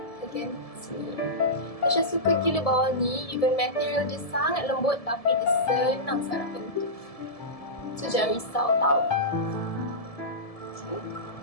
bahagian sini. Tasha suka gila bawal ni, even material dia sangat lembut tapi dia senang sangat bentuk. So jangan risau tau. Okay.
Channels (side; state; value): right; late; 1.7 ms